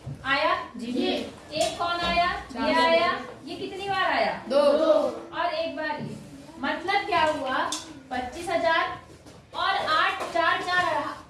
आया जी। एक कौन आया? ये आया। ये कितनी बार आया? 2। और एक बार ये। मतलब क्या हुआ? 25,000 और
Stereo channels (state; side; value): identical; both; correlation 1.00